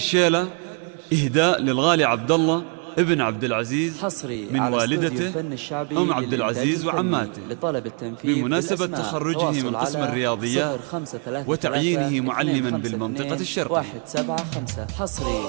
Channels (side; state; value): left; quieter; 39.3 dB